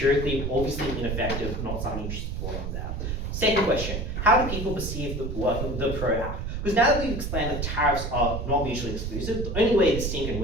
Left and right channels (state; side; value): noise; right; rumble, 4 dB below the sound